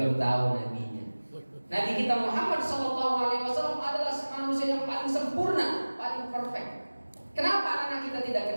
tahu nabinya. Nabi kita Muhammad SAW adalah manusia yang paling sempurna, paling perfect. Kenapa anak kita tidak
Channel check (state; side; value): inverted; both; correlation -1.00